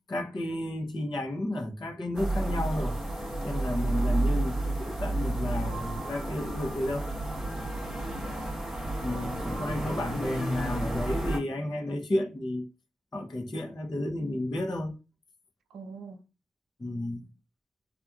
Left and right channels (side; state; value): both; normal; correlation 0.92